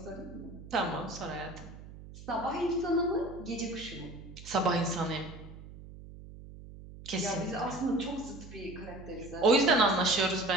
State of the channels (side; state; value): right; noise; hum, 15 dB below the sound